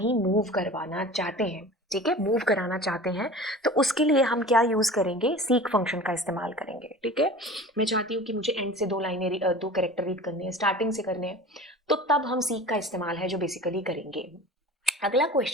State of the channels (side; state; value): both; normal; correlation 0.39